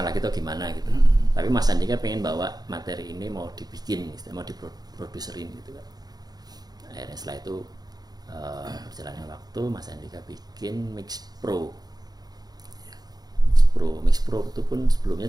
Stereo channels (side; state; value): left; late; 0.19 ms